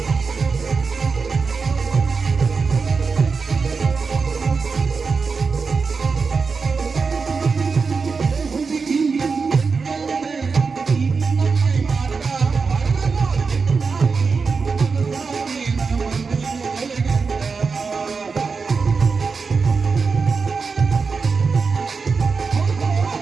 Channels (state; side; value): quieter; left; 4.9 dB